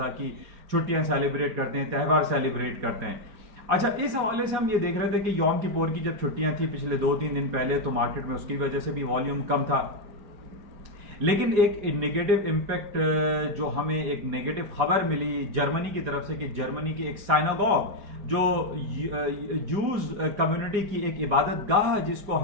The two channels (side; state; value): left; late; 5.0 ms